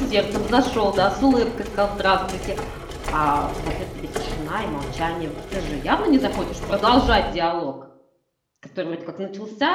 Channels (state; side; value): identical; both; correlation 1.00